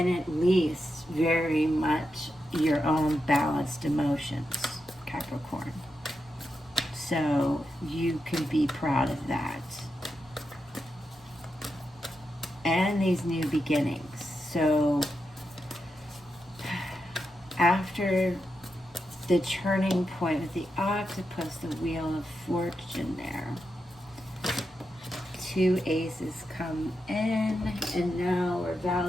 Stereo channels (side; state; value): both; normal; correlation 0.87